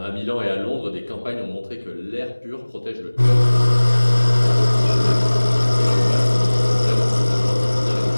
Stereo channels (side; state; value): both; inverted; correlation -1.00